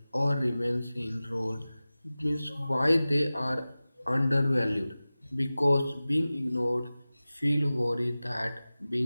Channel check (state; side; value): inverted; both; correlation -0.97